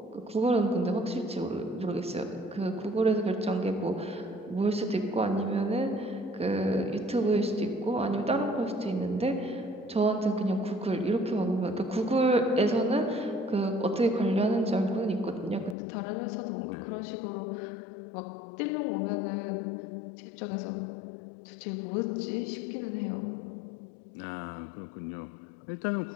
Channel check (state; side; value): drops out; right; at 15.8 s